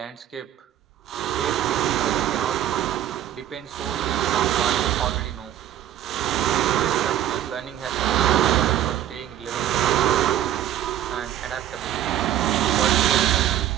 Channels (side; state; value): left; quieter; 11.7 dB